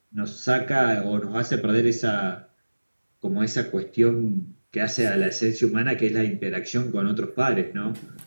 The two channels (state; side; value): inverted; both; correlation -1.00